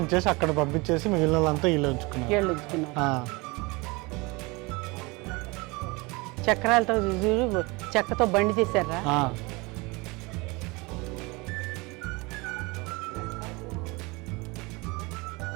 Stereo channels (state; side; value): quieter; left; 25.6 dB